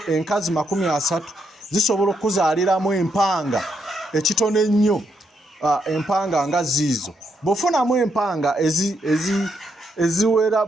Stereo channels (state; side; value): normal; both; correlation 0.78